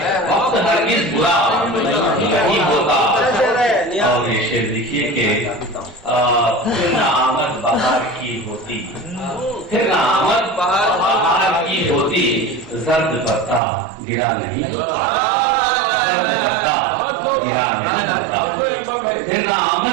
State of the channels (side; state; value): left; drops out; at 13.6 s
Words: وقت ہرگز برا نہیں ہوتا۔ اور یہ شعر دیکھیے کہ پھر نہ آمد بہار کی ہوتی، پھر نہ آمد بہار کی ہوتی، زرد پتا گرا نہیں، زرد پتا گرا نہیں، پھر نہ